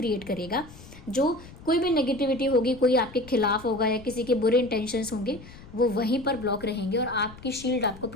करेगा, जो कोई भी नेगेटिविटी होगी, कोई आपके खिलाफ होगा या किसी के बुरे इंटेंशंस होंगे, वो वहीं पर ब्लॉक रहेंगे और आपकी शील्ड आपको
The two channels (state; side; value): noise; left; rumble, 18 dB below the sound